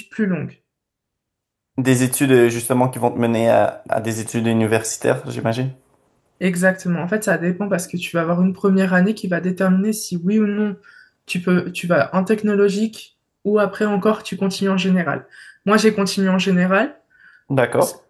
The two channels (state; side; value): identical; both; correlation 1.00